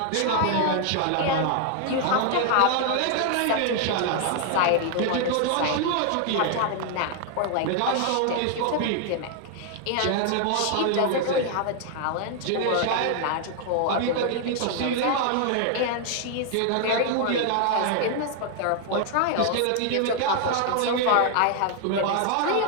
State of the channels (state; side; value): different; both; correlation 0.00